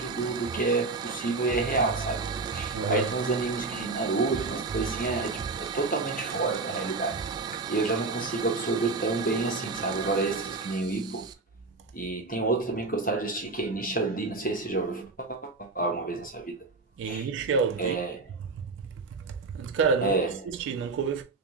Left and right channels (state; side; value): quieter; left; 3.7 dB